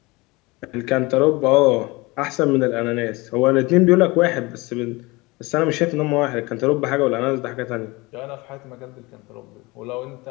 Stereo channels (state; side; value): quieter; right; 23.7 dB